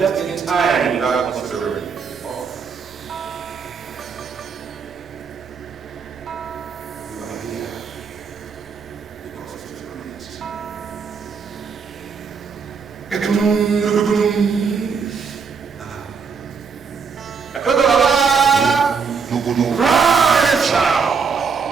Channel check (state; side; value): quieter; left; 5.7 dB